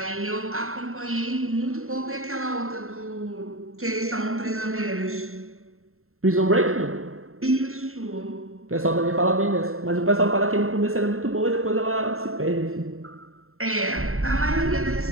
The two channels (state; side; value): late; left; 0.62 ms